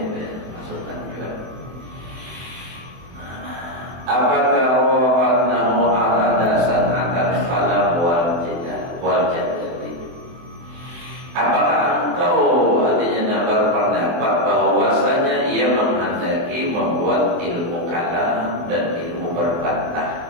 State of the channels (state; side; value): late; left; 23 ms